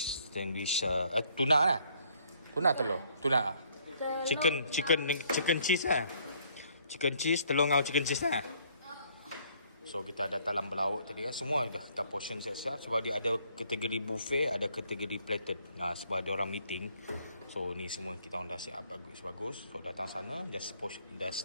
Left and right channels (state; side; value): inverted; both; correlation -0.64